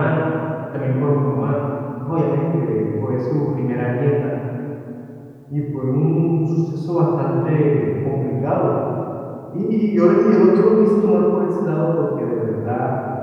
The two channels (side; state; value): both; identical; correlation 1.00